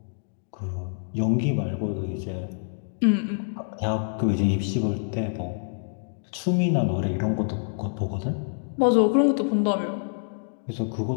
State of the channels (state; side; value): silent; right; digital silence